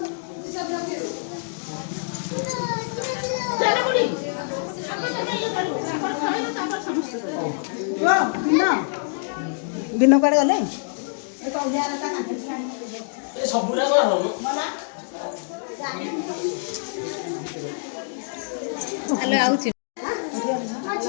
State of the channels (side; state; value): right; silent; digital silence